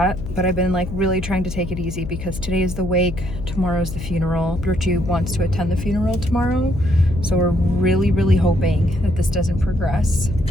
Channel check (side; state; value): left; noise; hum, 9 dB below the sound